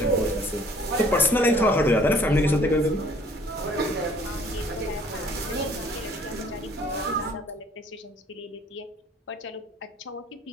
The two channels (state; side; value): normal; both; correlation 0.57